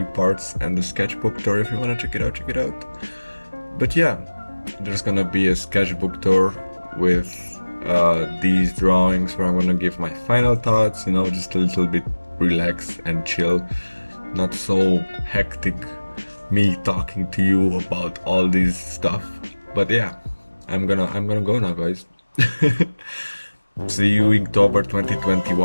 parts, and the sketchbook tour. If you wanna check it out, check it out. But yeah, there's gonna be a sketchbook tour with these drawings where I'm gonna give my final thoughts, you know, just a little bit relax and chill, not so hectic me talking to you about all this stuff. But yeah, I'm gonna go now, guys. See you Inktober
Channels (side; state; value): both; inverted; correlation -1.00